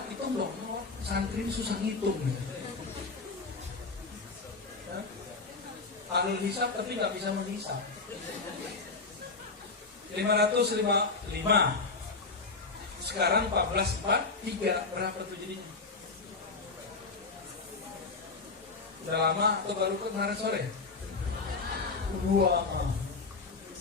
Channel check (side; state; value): right; quieter; 4.1 dB